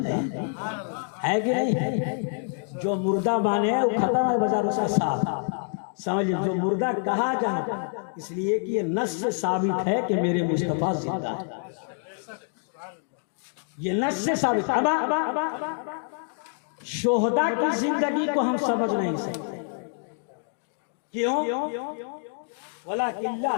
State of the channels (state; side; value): silent; right; 60 dB below the other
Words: ہے کہ نہیں؟ جو مردہ مانے وہ ختم ہے بازار سے صاحب، سمجھے؟ جو مردہ کہا جاتا اس لیے کہ یہ نص سے ثابت ہے کہ میرے مصطفیٰ زندہ ہے، یہ نص سے ثابت ہے۔ شہداء کی زندگی کو ہم سمجھ نہیں سکتے، کیوں؟ وَلَكِنْ